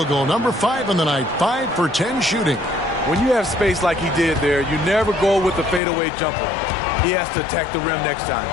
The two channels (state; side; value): drops out; right; at 5.8 s